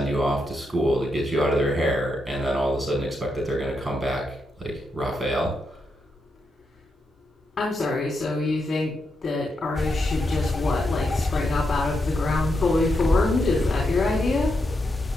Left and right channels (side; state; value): both; normal; correlation 0.83